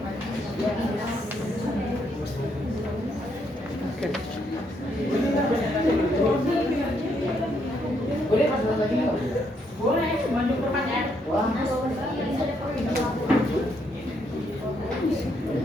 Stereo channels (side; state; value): both; normal; correlation 0.74